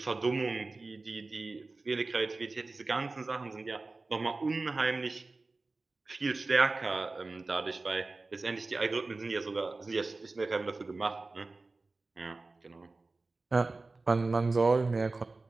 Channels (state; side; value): quieter; left; 3.5 dB